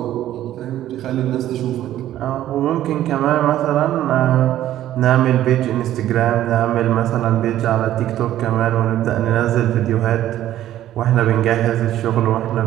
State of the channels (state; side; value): quieter; left; 12.8 dB